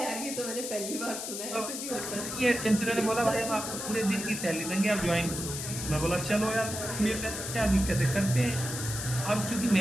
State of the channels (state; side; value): noise; left; hiss, 6 dB below the sound